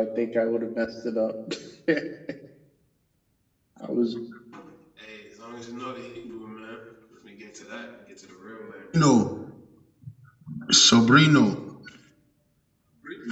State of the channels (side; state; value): both; identical; correlation 1.00